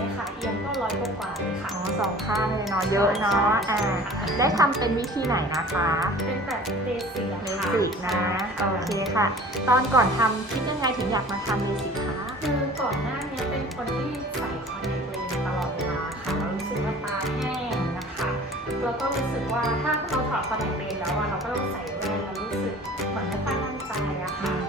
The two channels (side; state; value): both; normal; correlation 0.45